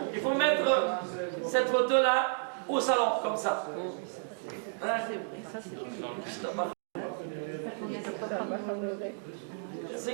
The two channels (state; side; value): silent; left; digital silence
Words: Il faut mettre cette photo-là au salon, comme ça. Hein? C'est